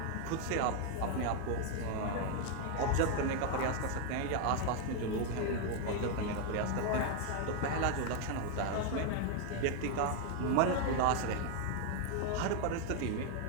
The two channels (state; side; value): different; both; correlation 0.00